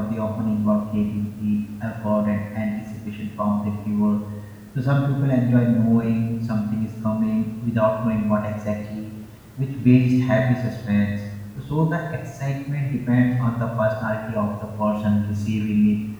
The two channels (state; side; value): identical; both; correlation 1.00